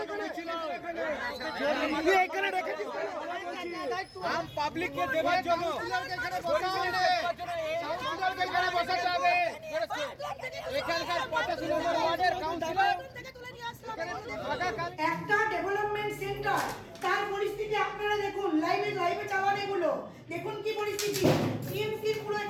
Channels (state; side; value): identical; both; correlation 1.00